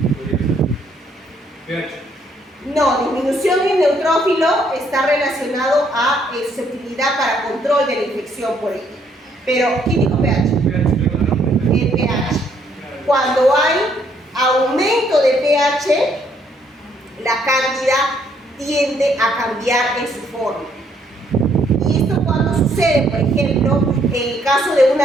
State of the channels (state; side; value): normal; both; correlation 0.68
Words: No, disminución en neutrófilo está relacionado a susceptibilidad para control de la infección por ella. Pero, ¿quién dijo pH? El pH. Cuando hay aumento de pH, la cándida tiende a cambiar en su forma. Y esto cuando sucede, por ejemplo, en el caso de